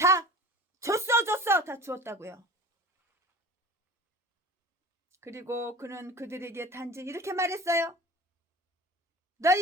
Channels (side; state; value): both; normal; correlation 0.40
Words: 줬어 다 주었다고요. 그리고 그는 그들에게 단지 이렇게 말했어요.